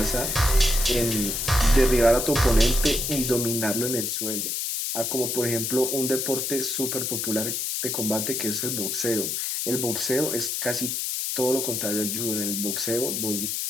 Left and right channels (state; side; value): noise; left; hiss, 1 dB below the sound